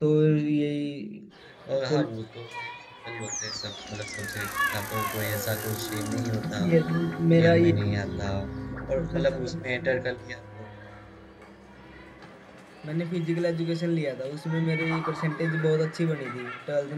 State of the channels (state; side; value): identical; both; correlation 1.00